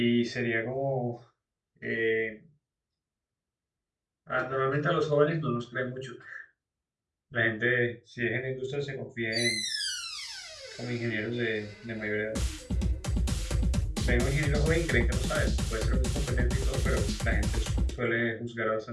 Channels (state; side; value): identical; both; correlation 1.00